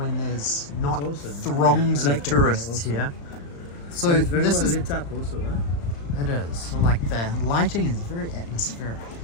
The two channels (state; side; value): late; right; 35 ms